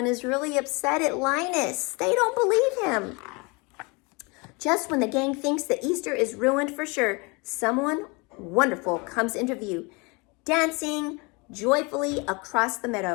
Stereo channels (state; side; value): quieter; right; 28.5 dB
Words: is really upset at Linus. They don't believe him. Just when the gang thinks that Easter is ruined for sure, someone wonderful comes into view, dancing joyfully across the